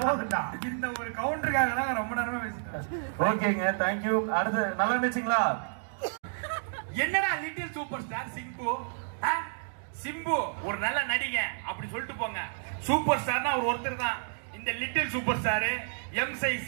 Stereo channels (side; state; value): left; silent; digital silence